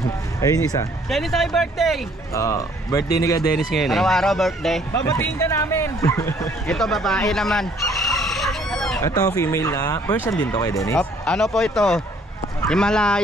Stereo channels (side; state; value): both; normal; correlation 0.61